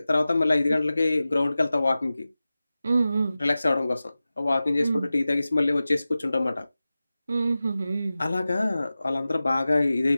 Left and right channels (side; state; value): both; inverted; correlation -0.95